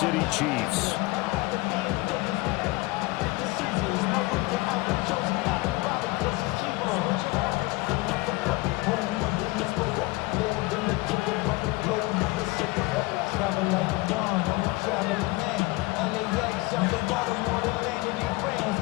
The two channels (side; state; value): right; quieter; 22.4 dB